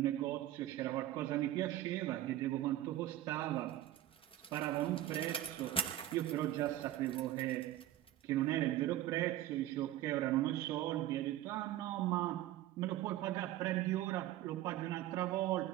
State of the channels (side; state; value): left; quieter; 13.8 dB